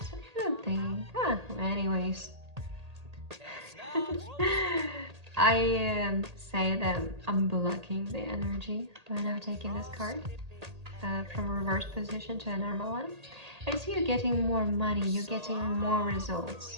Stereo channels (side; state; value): left; late; 1.8 ms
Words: I don't think. Anyways. I say that I'm blocking the energy by now taking this card from reverse position to a normal one. I see you getting more money, you're getting more